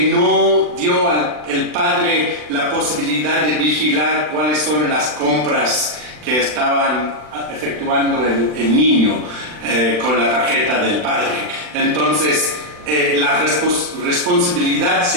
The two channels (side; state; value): left; late; 39 ms